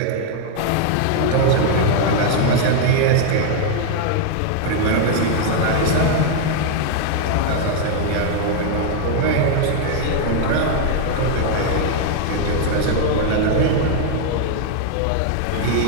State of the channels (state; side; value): different; both; correlation 0.00